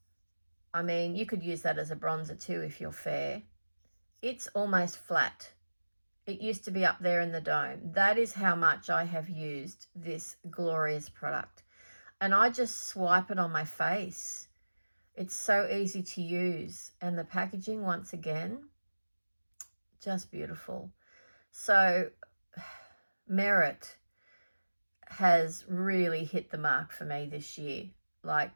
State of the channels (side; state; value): both; inverted; correlation -1.00